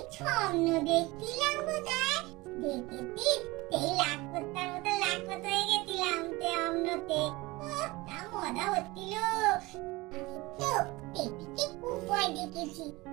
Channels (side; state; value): left; quieter; 21.8 dB